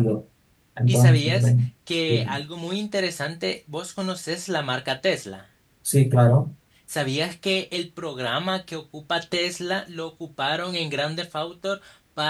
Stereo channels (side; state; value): both; identical; correlation 1.00